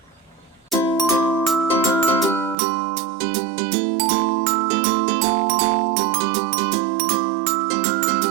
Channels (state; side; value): drops out; left; at 2.6 s